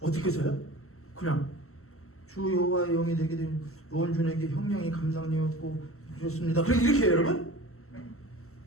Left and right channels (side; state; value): right; late; 0.63 ms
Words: 어떻게 해서요? 그냥 주 여호와의 영이 되게 된 노원준에게 형량이 감당되었고 주셨습니다. 그럼 이렇게 해요, 여러분?